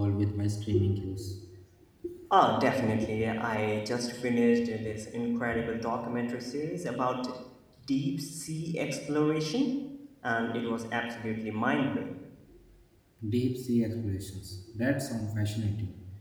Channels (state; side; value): identical; both; correlation 1.00